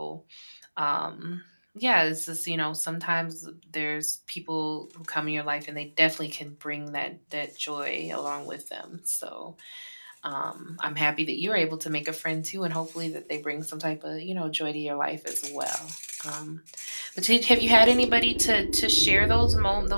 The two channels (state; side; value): inverted; both; correlation -1.00